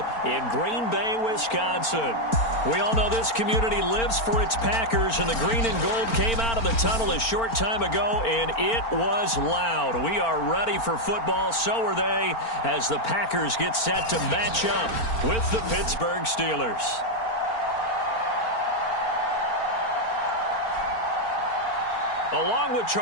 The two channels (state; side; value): late; right; 4.4 ms